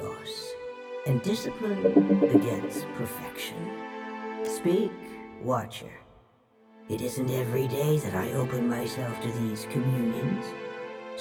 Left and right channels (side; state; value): both; identical; correlation 1.00